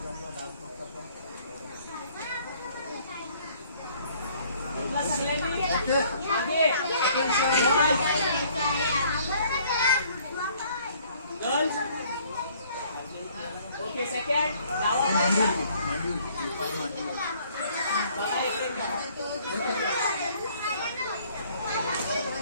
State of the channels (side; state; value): both; inverted; correlation -0.59